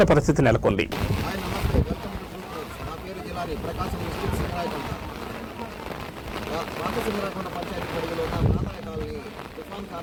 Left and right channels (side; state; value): both; identical; correlation 1.00